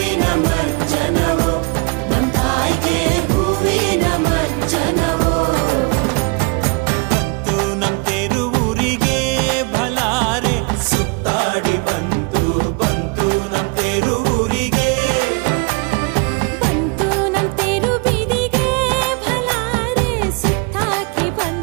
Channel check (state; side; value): quieter; left; 32.2 dB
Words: ಮಜ್ಜನವೋ ನಮ್ ತಾಯಿಗೆ ಹೂವಿನ ಮಜ್ಜನವೋ. ಬಂತು ನಮ್ ತೇರು ಊರಿಗೆ ಭಲಾರೆ, ಸುತ್ತಾಡಿ ಬಂತು ನಮ್ ತೇರು ಊರಿಗೆ. ಬಂತು ನಮ್ ತೇರು ಬೀದಿಗೆ ಭಲಾರೆ, ಸುತ್ತಾಕಿ